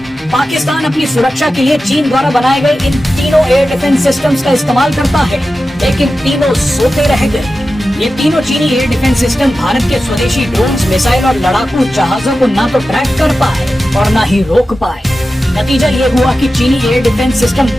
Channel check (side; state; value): both; normal; correlation 0.93